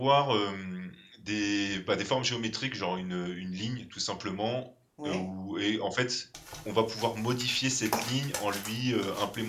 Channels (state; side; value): identical; both; correlation 1.00